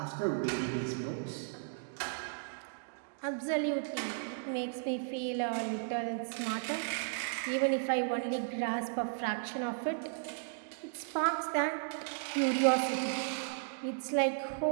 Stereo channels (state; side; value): silent; left; digital silence